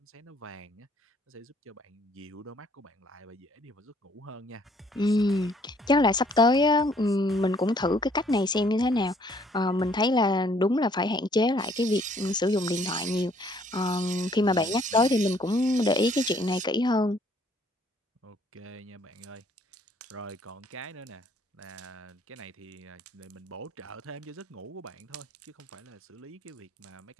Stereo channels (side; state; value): both; normal; correlation 0.63